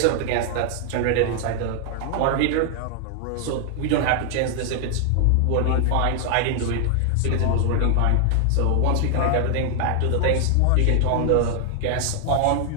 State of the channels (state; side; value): different; both; correlation 0.00